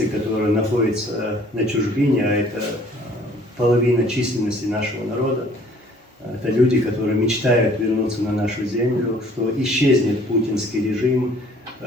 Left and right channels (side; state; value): both; normal; correlation 0.56